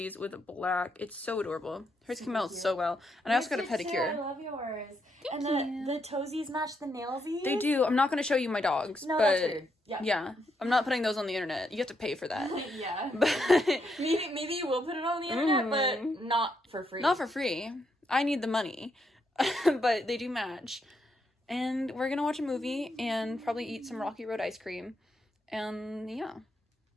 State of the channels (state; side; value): normal; both; correlation 0.79